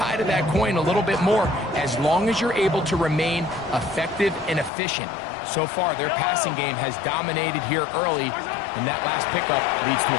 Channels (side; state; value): right; drops out; at 4.7 s